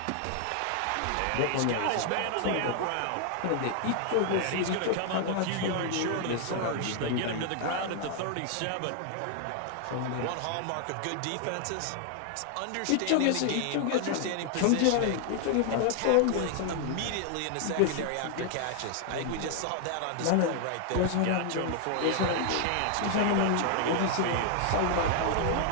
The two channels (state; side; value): different; both; correlation 0.00